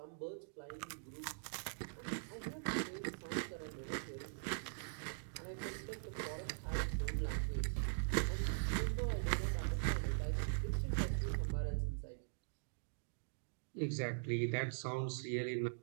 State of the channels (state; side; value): silent; left; digital silence